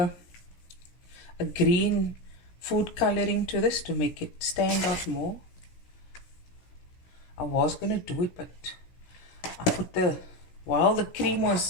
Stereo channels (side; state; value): right; late; 16 ms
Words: green food coloring to this to make it stand out more. I was going to do it, but I put while the cream